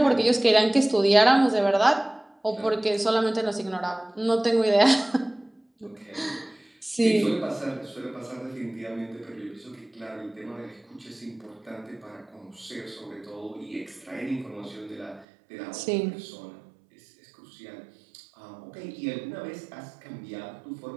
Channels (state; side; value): drops out; left; at 15.2 s